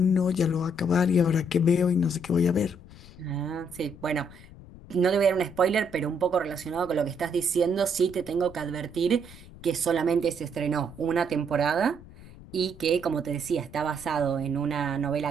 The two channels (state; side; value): noise; left; rumble, 19 dB below the sound